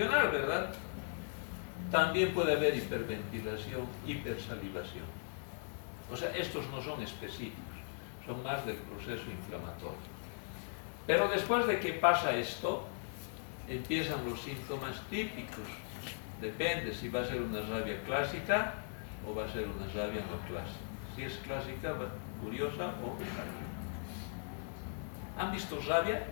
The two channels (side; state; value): right; silent; digital silence